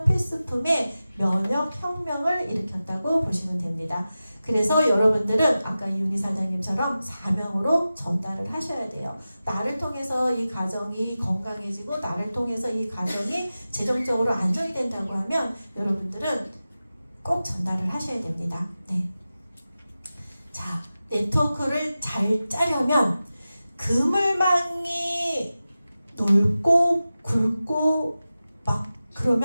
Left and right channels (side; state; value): both; inverted; correlation -0.94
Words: 필수품의 면역 혁명을 일으켰다고 보시면 됩니다. 그래서 여러분들은 아까 이윤희 사장님처럼 사명으로 전달을 하셔야 돼요. 나를 통해서 이 가정이 건강해지고 나를 통해서 이 가정이 재정적으로 안정이 된다고 하면 여러분들은 꼭 전달을 하셔야 됩니다. 네. 자, 네트워크를 잘 짜려면 그물망이 넓고 굵고 막